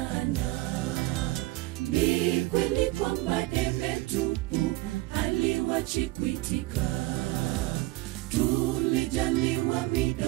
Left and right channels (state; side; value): quieter; left; 19.7 dB